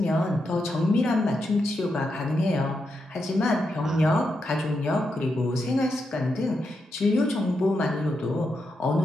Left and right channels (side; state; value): both; normal; correlation 0.85